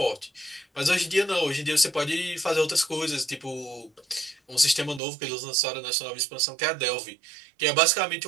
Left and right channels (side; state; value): left; drops out; at 5.0 s